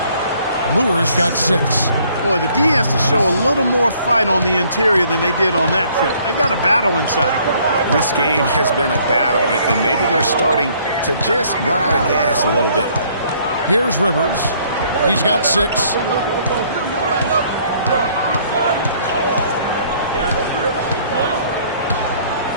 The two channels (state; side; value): inverted; both; correlation -0.62